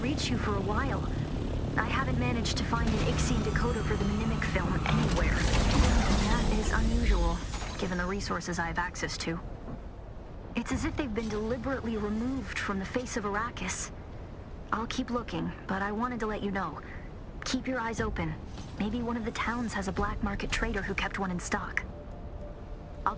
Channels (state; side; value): identical; both; correlation 1.00